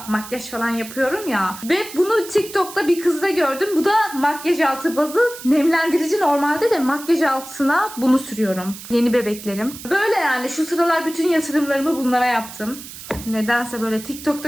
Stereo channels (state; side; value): noise; right; hiss, 14 dB below the sound